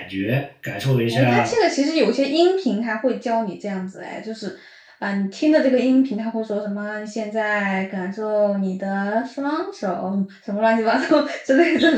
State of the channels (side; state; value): both; identical; correlation 1.00